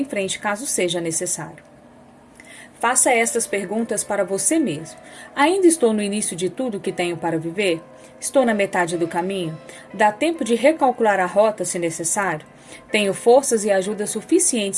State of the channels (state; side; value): identical; both; correlation 1.00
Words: frente caso seja necessário. Faça estas perguntas para você mesmo. Ainda estou no início de tudo que tenho para viver? Estou na metade do caminho? Dá tempo de recalcular a rota se necessário? Tenho forças e ajuda